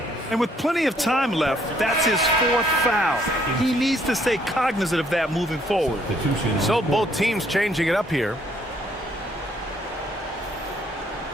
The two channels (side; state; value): both; normal; correlation 0.66